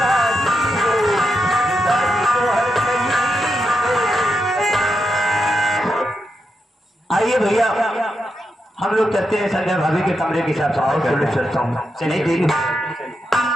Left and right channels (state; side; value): normal; both; correlation 0.85